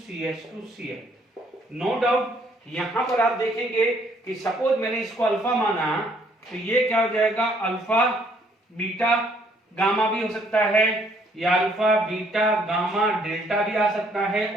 CH2 Cl। No doubt यहां पर आप देखेंगे कि सपोज मैंने इसको अल्फा माना, तो ये क्या हो जाएगा अल्फा बीटा गामा भी हो सकता है, या अल्फा बीटा गामा डेल्टा भी आ सकता है,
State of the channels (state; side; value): normal; both; correlation 0.65